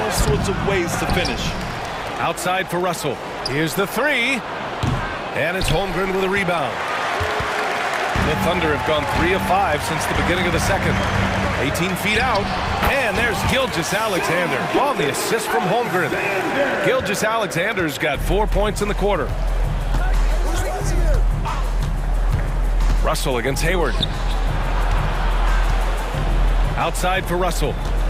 sorts of ways to finish. Outside for Russell. Here's the 3. And it's Holmgren with a rebound. The Thunder have gone 3 of 5 since the beginning of the second. 18 feet out, and there's Gilgeous-Alexander on the assist from Holmgren. Gilgeous-Alexander's got 4 points in the quarter. Russell against Hayward. Outside for Russell.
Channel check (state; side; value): identical; both; correlation 1.00